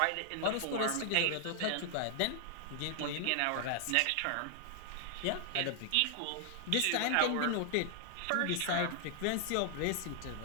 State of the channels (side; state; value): both; different; correlation 0.00